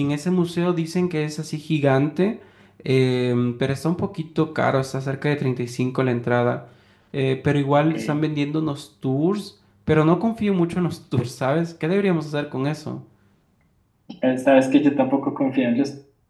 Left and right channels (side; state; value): both; identical; correlation 1.00